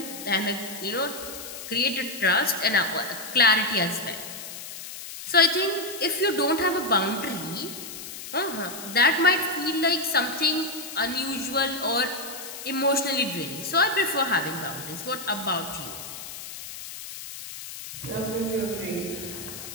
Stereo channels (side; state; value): left; noise; hiss, 11 dB below the sound